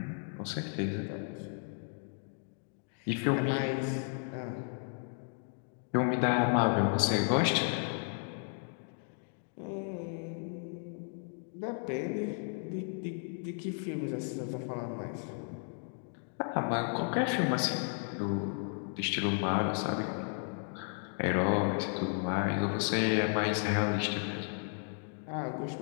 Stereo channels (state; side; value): silent; right; 55 dB below the other